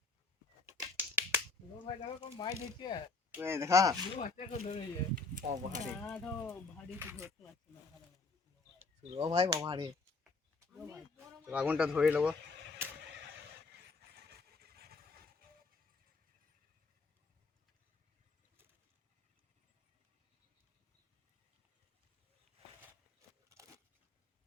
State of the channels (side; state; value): right; quieter; 3.8 dB